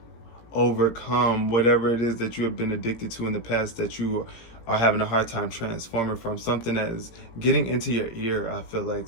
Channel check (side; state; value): right; late; 18 ms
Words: overcome whatever it is that you have been addicted to in the past that you are having a hard time transforming from. Something that is getting into your ear. I feel like